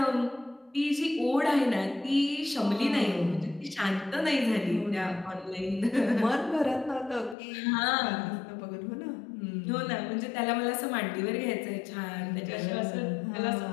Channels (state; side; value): drops out; right; at 7.4 s